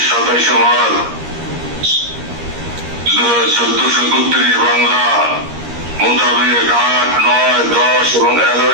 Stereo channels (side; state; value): left; late; 13 ms